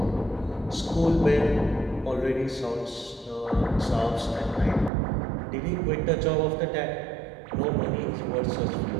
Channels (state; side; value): drops out; left; at 4.9 s